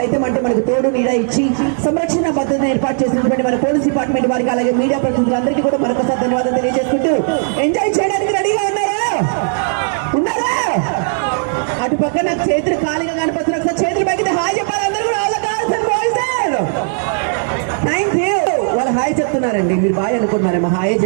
అంటే మనకు తోడు నీడ ఇచ్చి సంరక్షణ భద్రతను ఏర్పాటు చేసినటువంటి మన పోలీస్ డిపార్ట్మెంట్ వారికి, అలాగే మీడియా ప్రతినిధులందరికీ కూడా మరొకసారి ధన్యవాదాలు తెలియజేసుకుంటూ, ఎంజాయ్ చేయడానికి రెడీగా ఉన్నారా? అటు పక్క నాకు చేతులు ఖాళీగా కనిపిస్తున్నారు. ఒకసారి చేతులు పైకి హాయ్ చెప్పాలి అందరూ కూడా. Thank you. వాళ్ళు హాయ్ చెప్తున్నారండి, మీరు బాయ్ అనుకుంటున్నారేమో, హాయే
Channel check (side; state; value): left; silent; 69 dB below the other